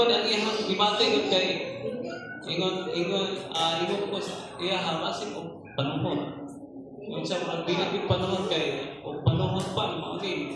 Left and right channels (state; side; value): identical; both; correlation 1.00